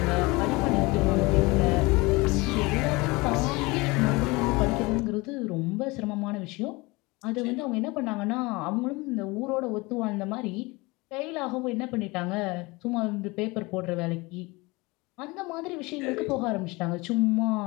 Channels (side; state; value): right; quieter; 24.2 dB